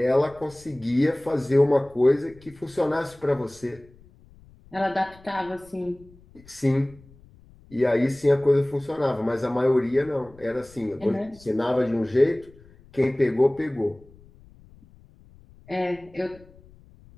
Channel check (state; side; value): noise; left; rumble, 25 dB below the sound